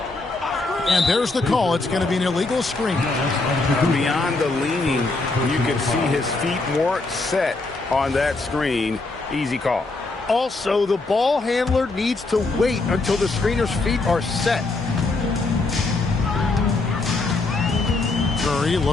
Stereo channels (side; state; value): right; quieter; 3.4 dB